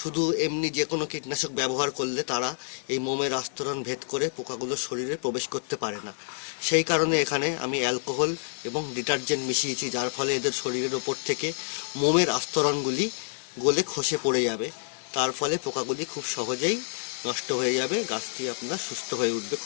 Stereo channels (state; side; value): silent; right; digital silence